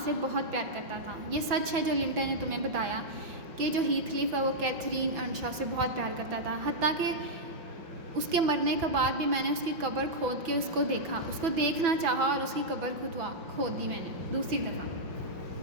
बहुत प्यार करता था। ये सच है जो लिंटन ने तुम्हें बताया कि जो हीथक्लिफ है वो कैथरीन अर्नशॉ से बहुत प्यार करता था, हत्ता कि उसके मरने के बाद भी मैंने उसकी कब्र खोद के उसको देखा, उसको देखना चाहा और उसकी कब्र खोद दी मैंने दूसरी दफ़ा,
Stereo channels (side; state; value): left; late; 6.1 ms